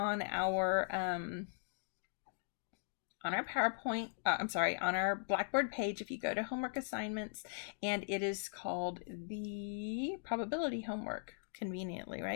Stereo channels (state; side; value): silent; right; digital silence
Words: our PowerPoint, on our Blackboard page, if you go to homework assignments, and it is called the probability homework, conveniently,